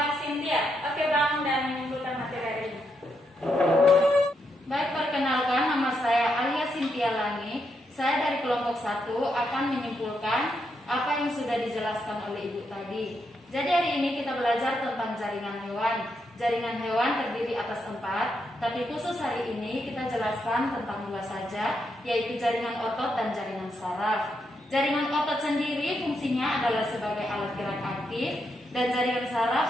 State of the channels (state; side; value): normal; both; correlation 0.81